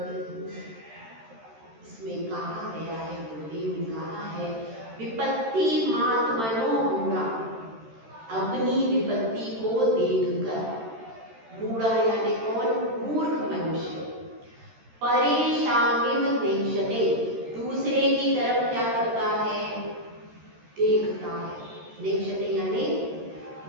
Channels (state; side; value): late; left; 13 ms